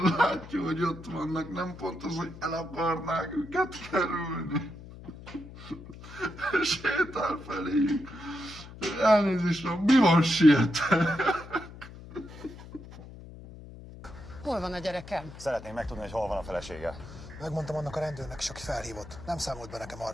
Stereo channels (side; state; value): left; noise; hum, 15 dB below the sound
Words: látja, hogy ott vannak, nem pont az, hogy el akarnák őket kerülni. Sétál feléjük. Elnézést, mi van, sietek? Hol van a gyerekem? Szeretném megtudni, hogy hol van a felesége. Megmondtam annak a rendőrnek is, aki felhívott. Nem számolt be nekem